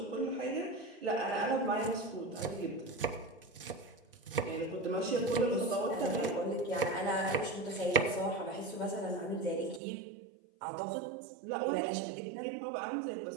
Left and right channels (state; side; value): drops out; left; at 9.8 s